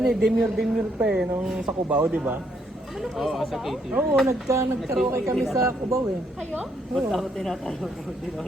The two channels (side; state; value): both; normal; correlation 0.72